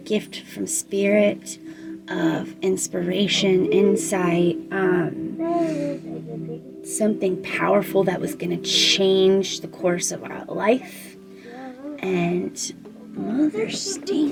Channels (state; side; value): identical; both; correlation 1.00